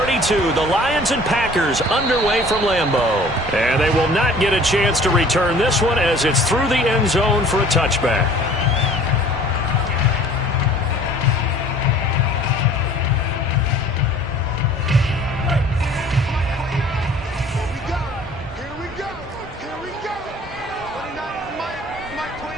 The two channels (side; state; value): both; normal; correlation 0.50